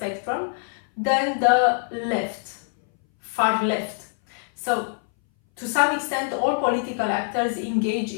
than the left, far left. So to some extent, all political actors engage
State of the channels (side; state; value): right; silent; 60 dB below the other